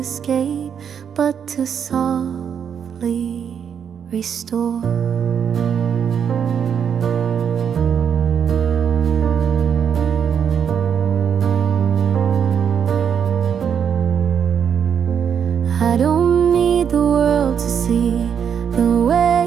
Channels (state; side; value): quieter; left; 7.8 dB